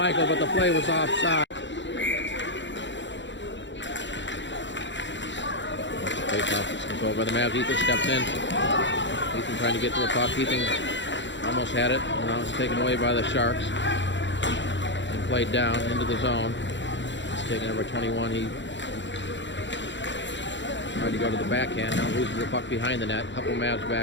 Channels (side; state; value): right; late; 0.53 ms